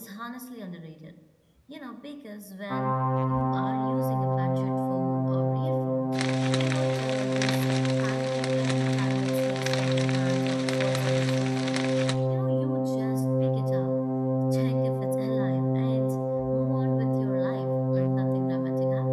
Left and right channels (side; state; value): both; identical; correlation 1.00